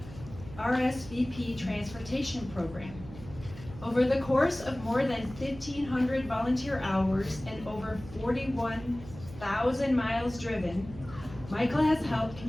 RSVP Transportation Program. Over the course of more than 1,500 volunteer hours and over 41,000 miles driven, Michael has helped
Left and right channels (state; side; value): noise; right; hum, 15 dB below the sound